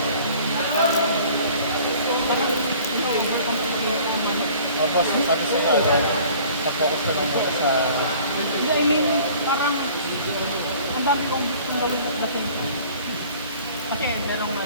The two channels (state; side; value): inverted; both; correlation -0.50